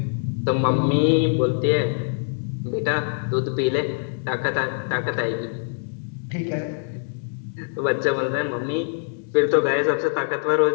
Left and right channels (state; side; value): silent; right; digital silence